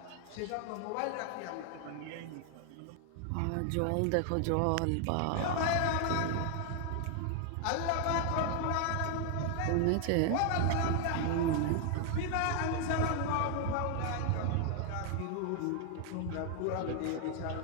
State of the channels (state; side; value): different; both; correlation 0.00